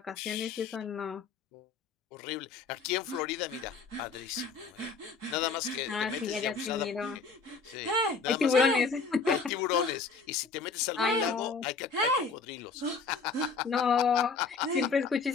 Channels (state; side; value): quieter; right; 4.7 dB